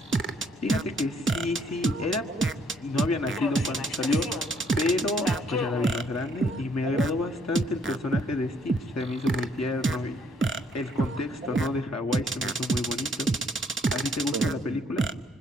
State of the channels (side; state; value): both; normal; correlation 0.66